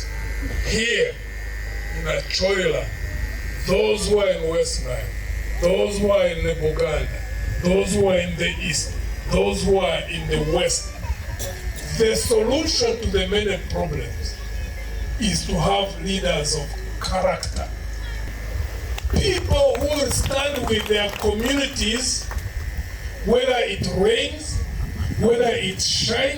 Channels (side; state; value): both; identical; correlation 1.00